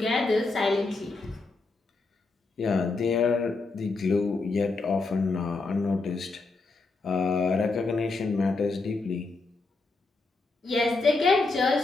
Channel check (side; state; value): right; quieter; 3.7 dB